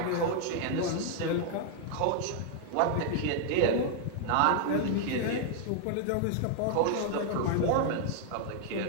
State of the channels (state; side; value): different; both; correlation 0.00